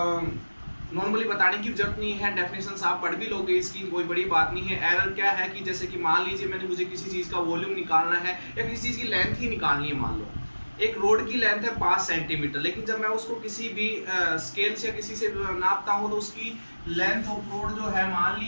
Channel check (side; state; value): both; inverted; correlation -1.00